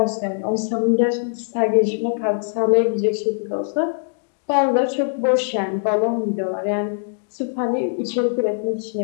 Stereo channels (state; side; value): silent; right; digital silence